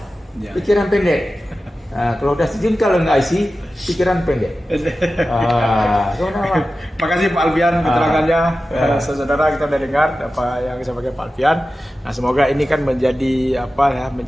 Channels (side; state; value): both; normal; correlation 0.94